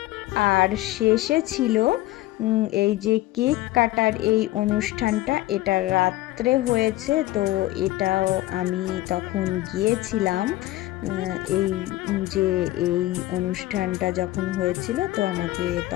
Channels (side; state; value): right; quieter; 17.0 dB